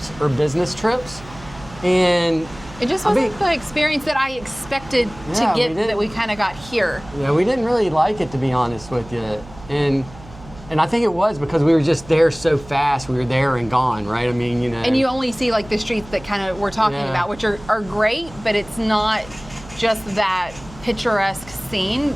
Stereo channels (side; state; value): right; noise; hum, 19 dB below the sound